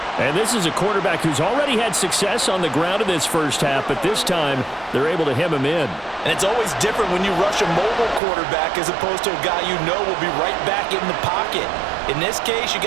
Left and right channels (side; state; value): left; drops out; at 8.2 s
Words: And this is a quarterback who's already had success on the ground in this first half, but this time they're able to hem him in. And it's always different when you rush a mobile quarterback as opposed to a guy you know will be right back in the pocket. In this case, you